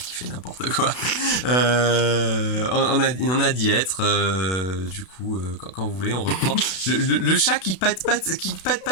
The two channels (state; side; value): late; right; 32 ms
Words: fait n'importe quoi. On a d'y être. Du coup, quand vous voulez, on reprend. Le chat qui patte